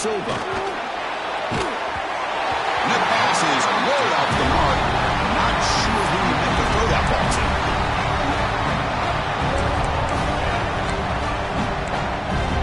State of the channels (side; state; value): both; identical; correlation 1.00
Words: And that pass is way off the mark. Not sure who you meant to throw that ball to.